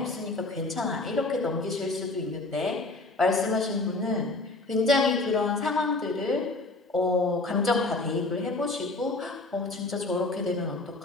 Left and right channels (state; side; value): quieter; right; 3.1 dB